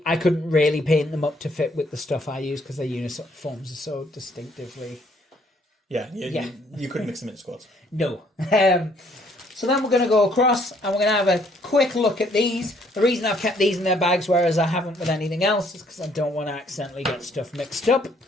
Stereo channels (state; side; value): normal; both; correlation 0.65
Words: I couldn't really paint them up to fit with the stuff I use because their uniforms are so distinctively... You couldn't mix them into squads. No. So then we're going to go across and we're going to have a quick look at these. The reason I've kept these in their bags, whereas I haven't with anything else, is because I don't want to accidentally get stuff mixed up.